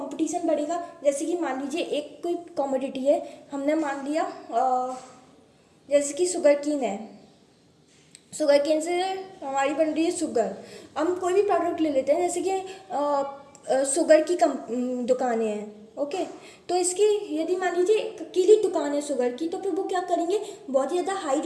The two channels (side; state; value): both; identical; correlation 1.00